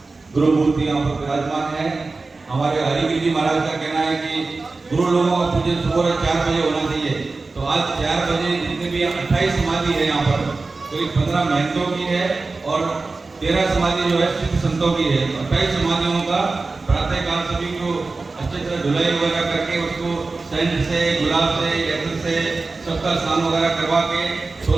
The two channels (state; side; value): quieter; left; 3.7 dB